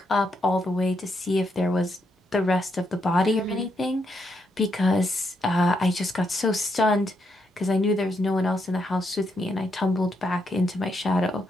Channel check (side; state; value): both; normal; correlation 0.79